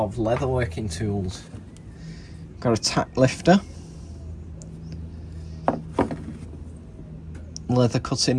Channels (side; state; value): both; identical; correlation 1.00